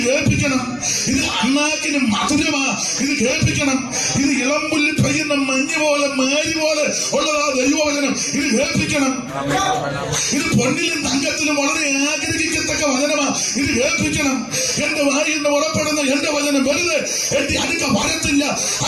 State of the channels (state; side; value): identical; both; correlation 1.00